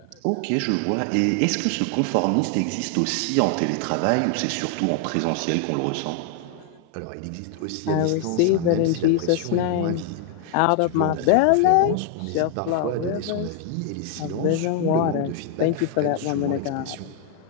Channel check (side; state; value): both; different; correlation 0.00